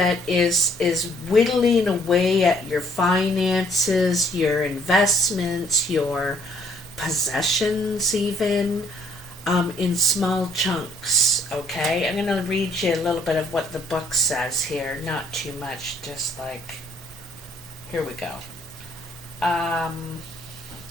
is whittling away at your finances, your investments, your possessions, even in small chunks. Okay, I'm going to read you a little bit of what the book says here. Not too much, just like, here we go.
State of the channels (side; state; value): both; normal; correlation 0.64